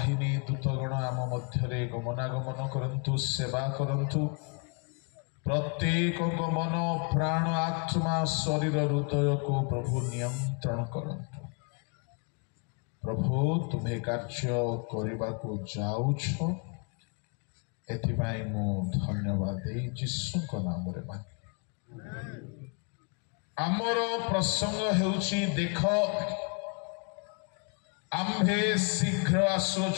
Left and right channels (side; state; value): right; quieter; 37.0 dB